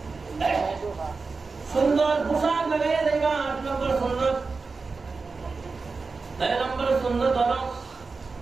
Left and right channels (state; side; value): quieter; left; 4.3 dB